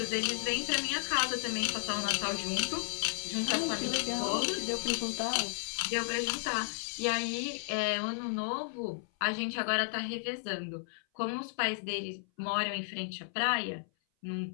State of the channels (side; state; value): right; silent; 55 dB below the other